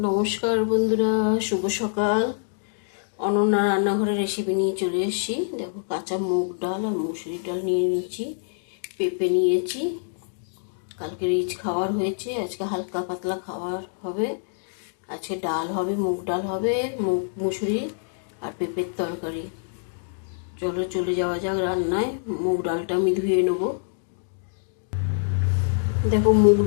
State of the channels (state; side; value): silent; right; digital silence